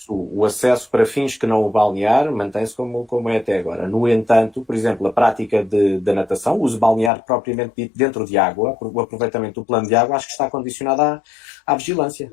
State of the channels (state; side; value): drops out; right; at 7.1 s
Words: o acesso para fins que não o balnear mantém-se como é até agora. No entanto, por exemplo, a prática da natação, o uso balnear propriamente dito dentro de água, o aproveitamento do plano de água, acho que está condicionado à vigilância.